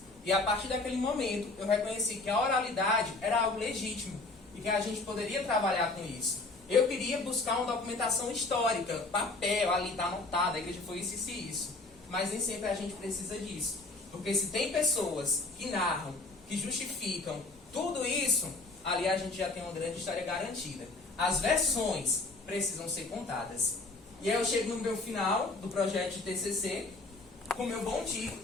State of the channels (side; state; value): right; quieter; 3.3 dB